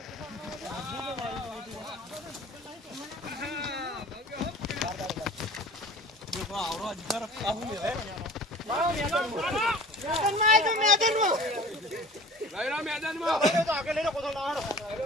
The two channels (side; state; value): both; normal; correlation 0.43